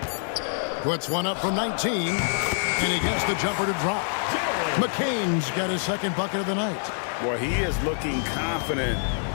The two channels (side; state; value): right; silent; digital silence